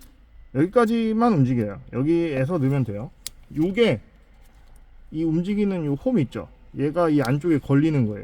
여기까지만 움직여요. 여기에서 넣으면 돼요. 요게 이 움직이는 요 홈 있죠? 얘가 이 안쪽에 걸리는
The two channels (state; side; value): identical; both; correlation 1.00